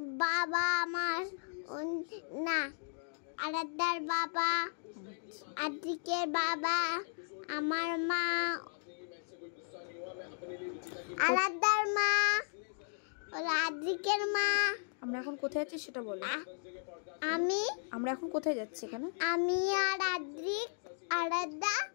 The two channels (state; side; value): silent; right; digital silence